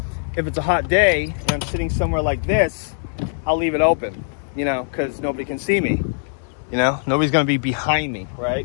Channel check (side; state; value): right; silent; digital silence